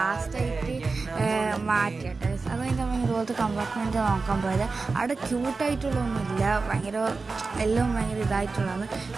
മാറ്റിയിട്ട് അത് കഴിഞ്ഞിട്ട് നമ്മൾ ഇതുപോലത്തെ കമ്പാർട്ട്മെൻറ്റ് നോക്കാൻ പോയത്. അവിടെ ക്യൂട്ടായിട്ടുള്ളതൊന്നുമില്ല, എല്ലാം ഭയങ്കര ഇതായിട്ടുള്ളതാണ്.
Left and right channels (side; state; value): left; quieter; 4.1 dB